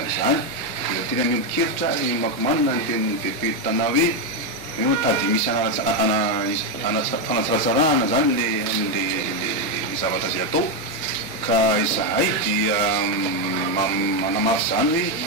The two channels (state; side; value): normal; both; correlation 0.05